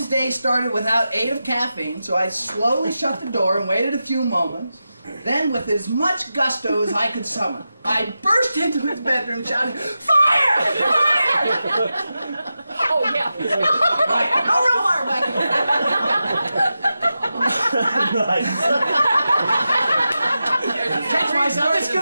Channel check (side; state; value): both; inverted; correlation -0.91